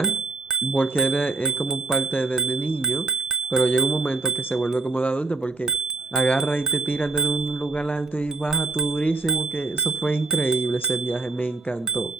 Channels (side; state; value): left; quieter; 3.4 dB